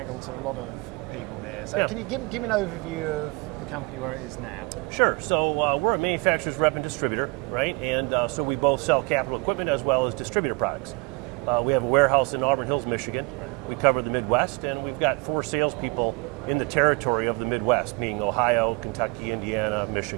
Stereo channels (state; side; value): quieter; left; 28.2 dB